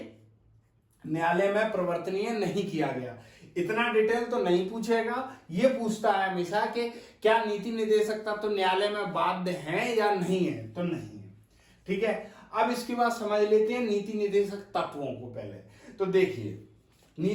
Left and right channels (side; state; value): both; identical; correlation 1.00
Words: न्यायालय में परिवर्तनीय नहीं किया गया। इतना डिटेल तो नहीं पूछेगा, ये पूछता है हमेशा कि क्या नीति निदेशक तत्व न्यायालय में बाध्य हैं या नहीं है? तो नहीं है। ठीक है, अब इसके बाद समझ लेते हैं नीति निदेशक तत्वों को। पहले तो देखिए,